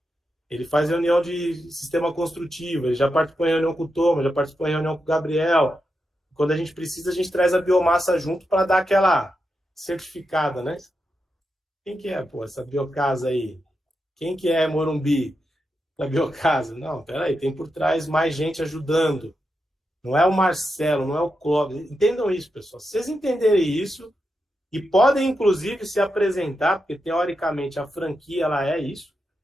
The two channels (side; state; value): both; normal; correlation 0.87